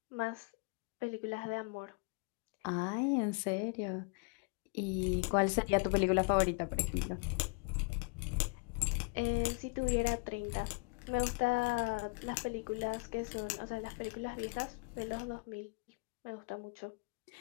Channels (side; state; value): right; quieter; 31.2 dB